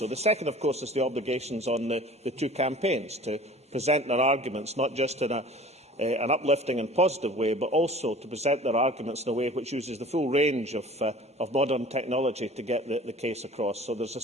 The second, of course, is the obligations on the two campaigns to present their arguments, not just in an uplifting and positive way, but also to present their arguments in a way which uses the full range of modern technology to get the case across. So there's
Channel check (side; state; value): both; normal; correlation 0.45